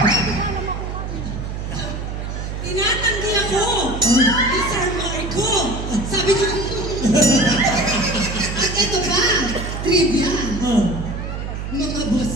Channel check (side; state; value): right; noise; hum, 6 dB below the sound